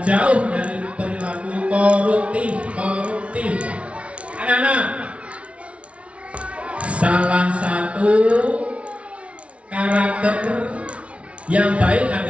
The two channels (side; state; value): left; late; 0.062 ms